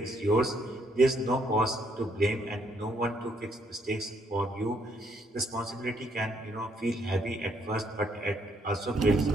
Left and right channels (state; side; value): normal; both; correlation 0.71